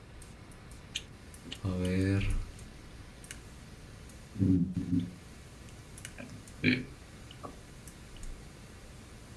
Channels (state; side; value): identical; both; correlation 1.00